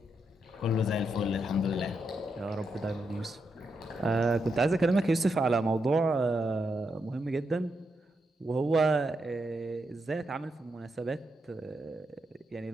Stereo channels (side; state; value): both; normal; correlation 0.83